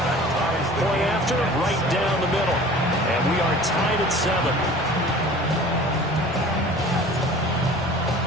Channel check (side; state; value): both; normal; correlation 0.44